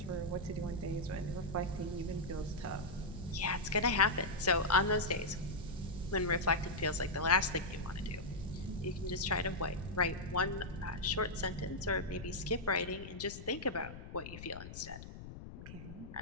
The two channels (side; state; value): left; noise; rumble, 12 dB below the sound